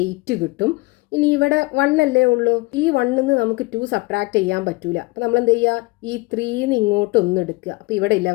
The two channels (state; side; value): quieter; right; 23.8 dB